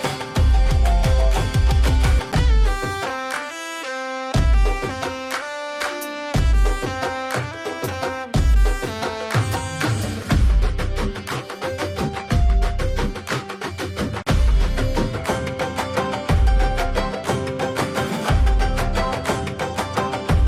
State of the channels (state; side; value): identical; both; correlation 1.00